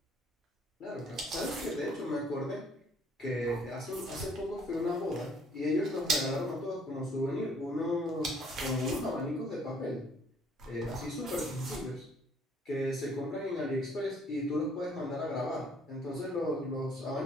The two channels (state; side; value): normal; both; correlation 0.61